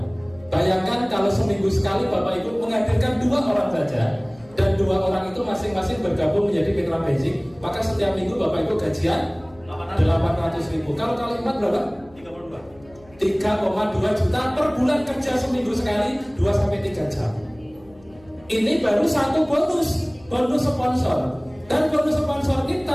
Bayangkan kalau seminggu sekali Bapak Ibu menghadirkan 2 orang saja, dan 2 orang itu masing-masing bergabung menjadi mitra basic, maka setiap minggu Bapak Ibu gajian 800.000. Kalau kali 4 berapa? 3,2 juta per bulan kerja seminggu sekali 2-3 jam. Ini baru satu bonus sponsor. Dan bonus sponsor ini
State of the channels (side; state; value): left; noise; hum, 26 dB below the sound